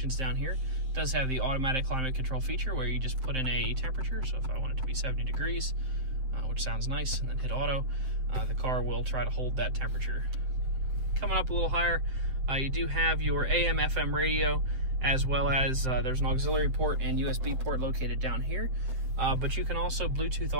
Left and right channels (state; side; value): late; left; 7.7 ms